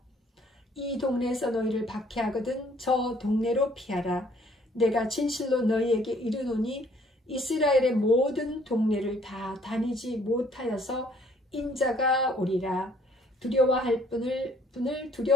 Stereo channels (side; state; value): both; normal; correlation 0.61